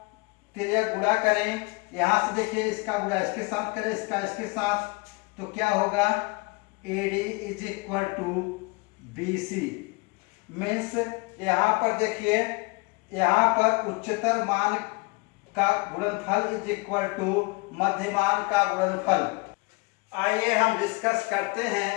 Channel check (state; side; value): quieter; right; 26.9 dB